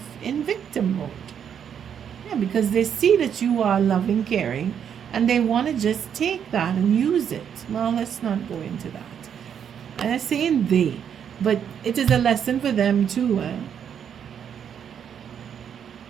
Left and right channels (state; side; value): quieter; left; 8.3 dB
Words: in victim mode. Yeah, because they see that you are loving, caring, and they want to just take that and use it. Well, let's not go into that. And I'm saying they, but it is a lesson for them too.